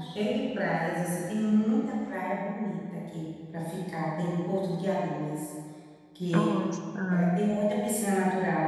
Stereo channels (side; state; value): both; identical; correlation 1.00